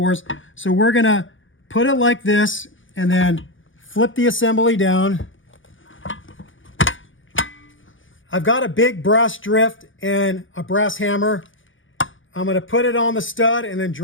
So we're gonna put it like this and then flip the assembly down. I've got a big brass drift and a brass hammer. I'm gonna put it on the stud and then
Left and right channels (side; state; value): right; late; 0.57 ms